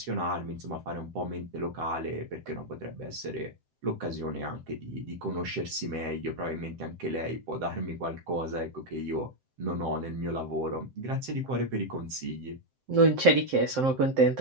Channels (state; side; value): late; left; 7.7 ms